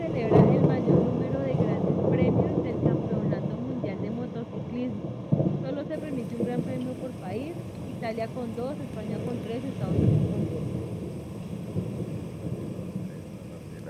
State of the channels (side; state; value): both; identical; correlation 1.00